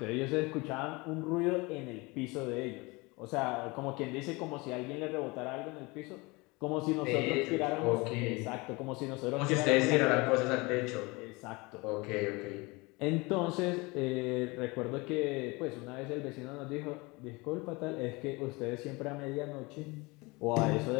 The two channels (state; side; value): quieter; right; 25.2 dB